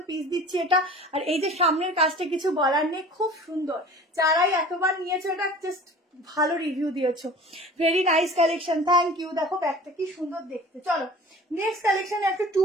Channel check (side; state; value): both; normal; correlation 0.42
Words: পিস দিচ্ছি এটা। আর এই যে সামনের কাজটা কিছু বলার নেই, খুব সুন্দর, যারাই এতবার নিয়েছো এটা জাস্ট ভালো রিভিউ দিয়েছো, very nice collection, thank you. দেখো ব্যাগটা কি সুন্দর দেখতে। চলো নেক্সট কালেকশনে একটা 2